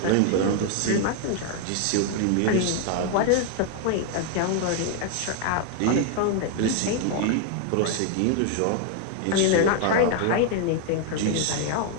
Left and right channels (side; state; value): both; different; correlation 0.00